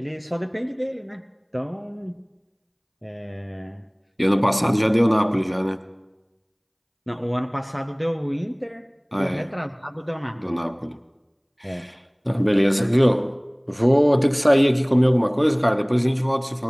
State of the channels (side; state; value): both; identical; correlation 1.00